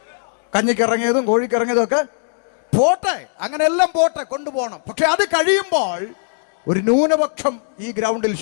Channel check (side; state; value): right; silent; digital silence